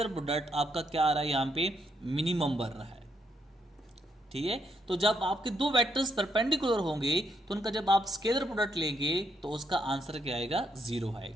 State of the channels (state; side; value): normal; both; correlation 0.76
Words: प्रोडक्ट आपका क्या आ रहा है, यहाँ पे मिनिमम बन रहा है। ठीक है, तो जब आपके दो वेक्टर्स परपेंडिकुलर होंगे तो उनका जब आप स्केलर प्रोडक्ट लेंगे तो उसका आंसर क्या आएगा, 0